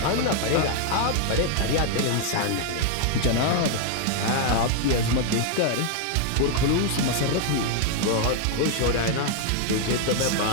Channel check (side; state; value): both; different; correlation 0.00